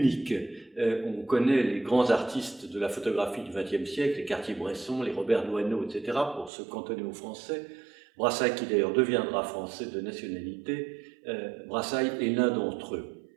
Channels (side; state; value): left; drops out; at 6.5 s